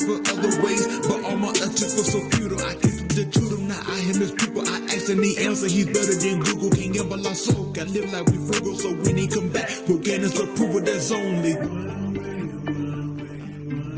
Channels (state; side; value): identical; both; correlation 1.00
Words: for other ways, but all my attempts were so futile. I came to the truth, now I am his people. I asked and the answer, he's better than Google. Can't gamble our soul, got live like we frugal. So when he come back, we'll gain us approval, that's only.